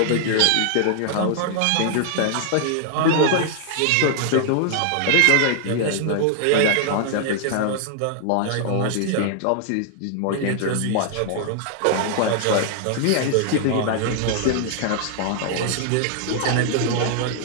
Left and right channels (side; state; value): both; different; correlation 0.00